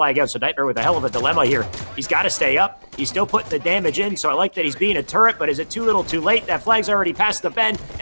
out, so Nightmare with a hell of a dilemma here. He's got to stay up. He's still putting the damage in, so I like that he's being a turret, but is it too little too late? That flag's already past the bend,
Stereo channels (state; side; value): inverted; both; correlation -1.00